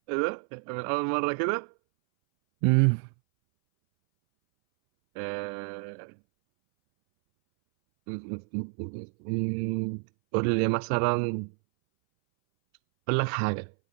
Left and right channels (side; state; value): left; silent; 59 dB below the other